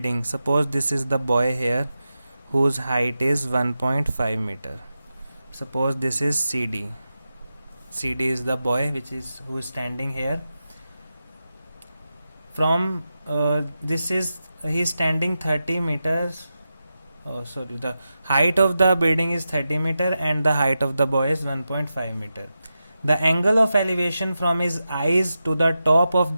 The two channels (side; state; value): both; inverted; correlation -0.91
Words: Suppose this is the boy here whose height is 1.5 meter. Suppose this is CD. CD is the boy who is standing here. From he is standing 30 meters. The height of the building is 30 meter and the height of the boy is 1.5 meter. The angle of elevation from his eyes to the top of